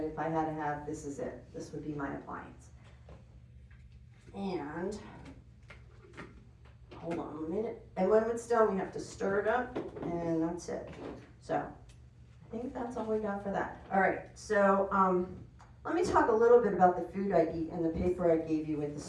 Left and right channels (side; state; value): both; identical; correlation 1.00